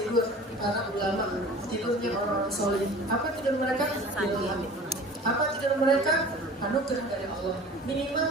para ulama, tidurnya orang-orang soleh. Apa tidur mereka? Ilham. Apa tidur mereka? Anugerah dari Allah. Minimal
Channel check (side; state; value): both; normal; correlation 0.43